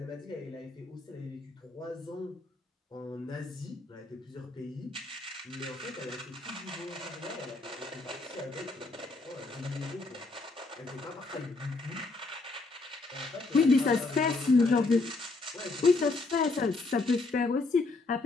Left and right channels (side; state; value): right; quieter; 3.5 dB